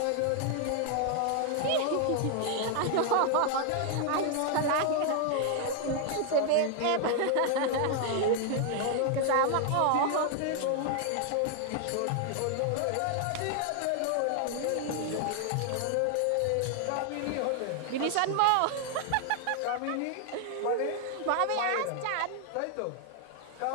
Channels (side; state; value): both; different; correlation 0.00